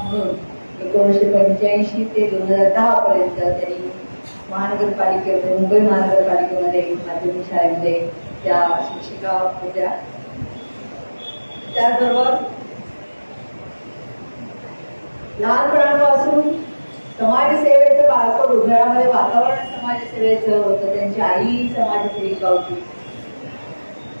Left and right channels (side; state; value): both; inverted; correlation -1.00